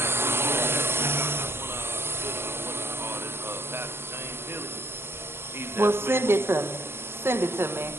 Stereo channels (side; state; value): left; late; 0.11 ms